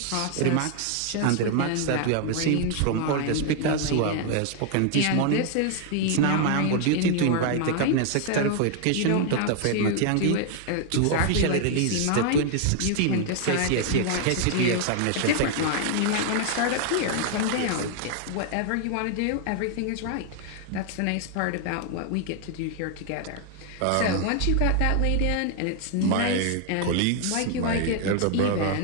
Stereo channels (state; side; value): different; both; correlation 0.00